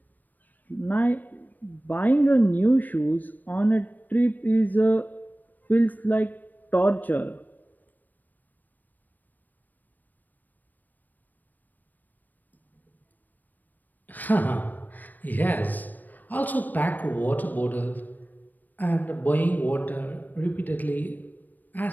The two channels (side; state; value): right; late; 0.086 ms